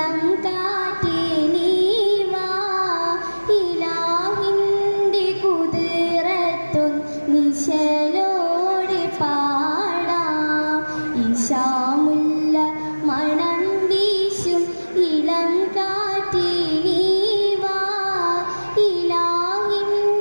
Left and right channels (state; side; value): inverted; both; correlation -1.00